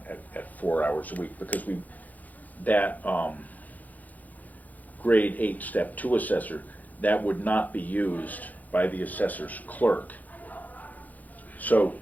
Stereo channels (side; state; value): right; late; 0.080 ms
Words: at 4 hours a week, because that grade 8 step 2 assessor, that would not be used by the assessor's clerk. So